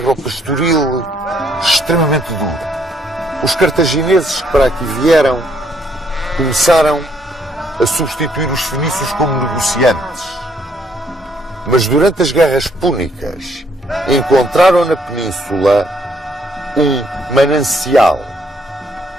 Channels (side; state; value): both; normal; correlation 0.69